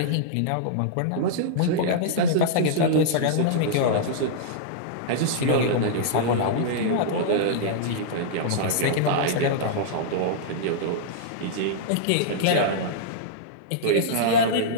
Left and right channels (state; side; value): different; both; correlation -0.02